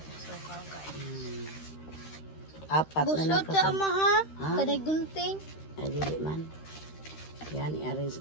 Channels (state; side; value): late; right; 13 ms